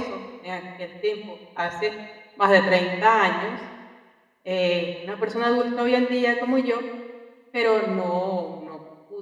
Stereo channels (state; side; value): identical; both; correlation 1.00